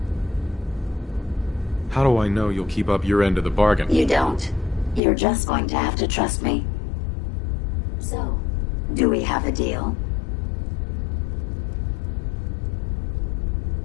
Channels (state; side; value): drops out; right; at 5.0 s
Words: How do I know you'll keep up your end of the bargain? You don't. You're just going to have to trust me. So, do we have a deal?